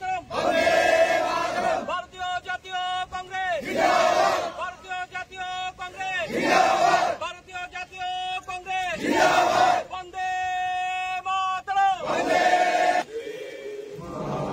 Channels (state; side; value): identical; both; correlation 1.00